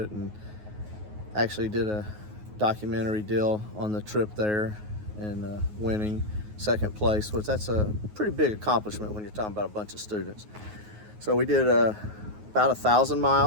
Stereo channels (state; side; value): late; left; 9.5 ms